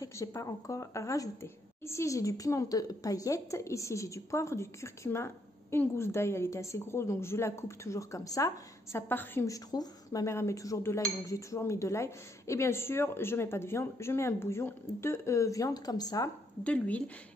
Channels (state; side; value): normal; both; correlation 0.74